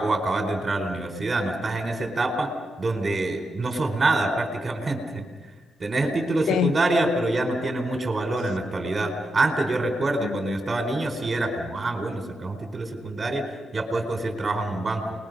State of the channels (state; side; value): normal; both; correlation 0.86